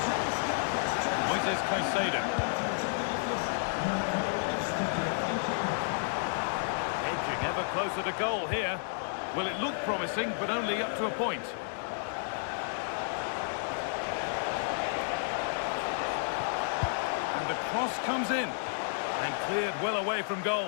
Moises Caicedo. Edging ever closer to goal here. Well, it looked promising, but only up to a point. And And the cross comes in. And cleared well away from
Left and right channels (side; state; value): right; silent; digital silence